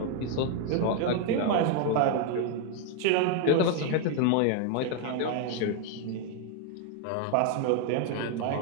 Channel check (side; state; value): both; different; correlation 0.01